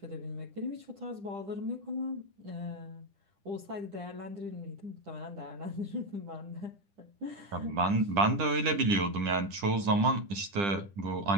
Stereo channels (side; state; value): left; late; 10 ms